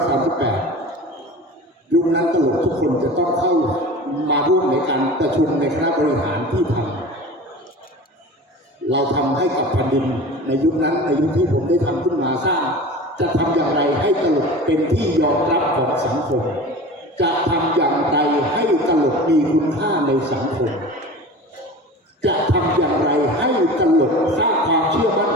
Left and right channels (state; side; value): normal; both; correlation 0.36